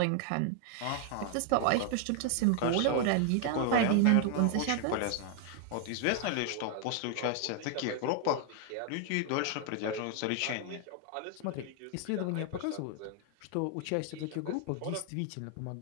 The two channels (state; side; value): different; both; correlation 0.00